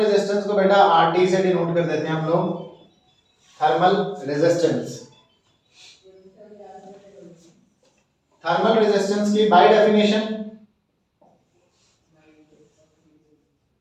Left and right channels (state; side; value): identical; both; correlation 1.00